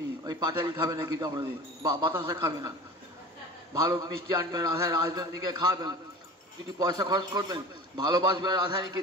ওই পাটালি খাবে না কিন্তু আমাদের, বাতাসা খাবে না, ভালো মিষ্টি আনবেন রাধা রাজনন্দিনীকে খাবেন, দুটি পয়সা খরচ করবেন, ভালোবাসবে রাধারানীকে,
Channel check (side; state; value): both; normal; correlation 0.37